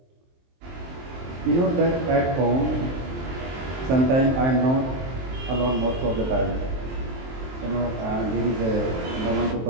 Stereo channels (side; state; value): left; late; 23 ms